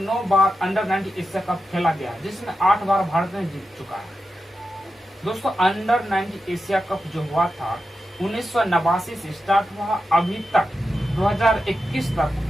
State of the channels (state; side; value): normal; both; correlation 0.89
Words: बार अंडर 90 एशिया कप खेला गया, जिसमें 8 बार भारत ने जीत चुका है दोस्तों। अंडर 90 एशिया कप जो हुआ था 1989 से स्टार्ट हुआ, अभी तक 2021 तक